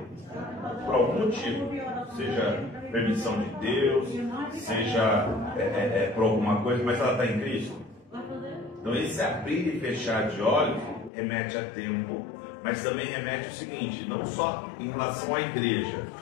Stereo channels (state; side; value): drops out; right; at 11.1 s